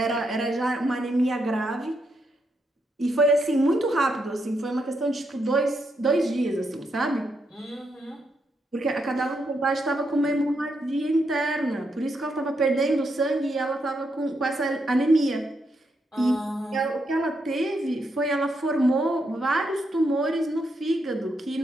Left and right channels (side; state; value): both; normal; correlation 0.80